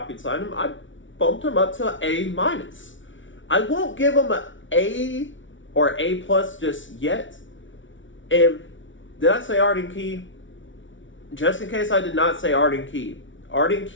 signed him, I bumped him up to A-. I won't give him an A or A+ just yet. And did I say Arden Key? Just in case I did not say Arden Key. Arden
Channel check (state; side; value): late; right; 0.56 ms